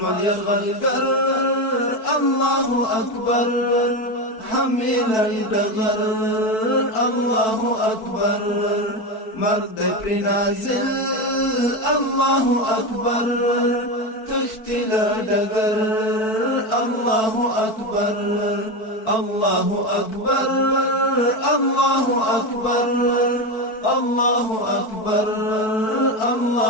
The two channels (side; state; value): right; late; 4.5 ms